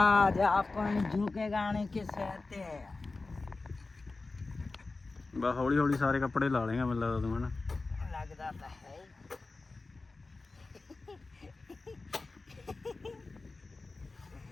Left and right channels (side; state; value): right; quieter; 3.6 dB